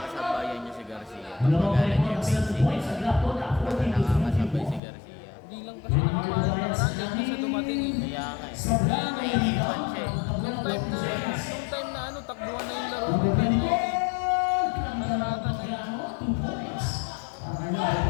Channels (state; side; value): drops out; right; at 4.8 s